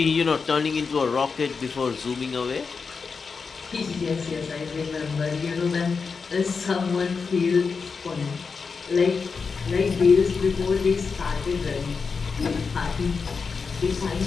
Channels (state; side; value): quieter; right; 5.1 dB